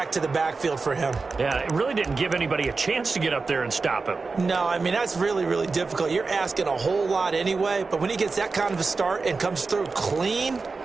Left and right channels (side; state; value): left; quieter; 4.2 dB